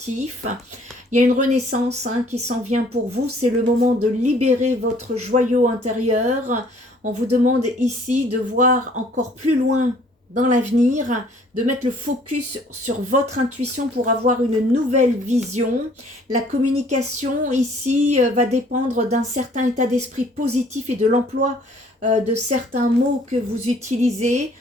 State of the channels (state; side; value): normal; both; correlation 0.58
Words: Il y a une renaissance qui s'en vient pour vous. C'est le moment de libérer votre joyau intérieur. On vous demande ici de voir encore plus loin dans l'avenir, de mettre le focus sur votre intuition pour avoir une nouvelle vision. La communication ici va dépendre d'un certain état d'esprit positif et de l'emploi de certains mots que vous utilisez.